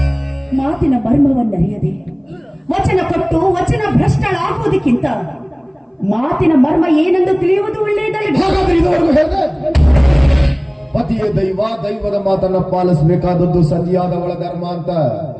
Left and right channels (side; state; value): both; identical; correlation 1.00